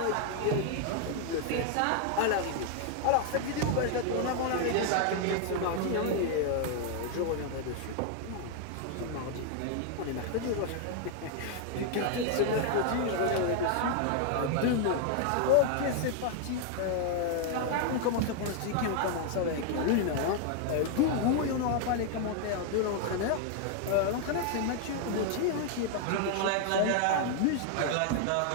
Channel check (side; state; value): both; different; correlation 0.00